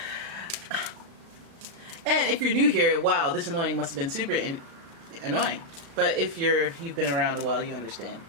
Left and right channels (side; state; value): left; late; 36 ms